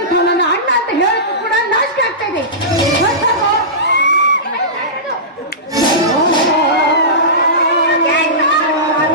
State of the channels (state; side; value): normal; both; correlation -0.20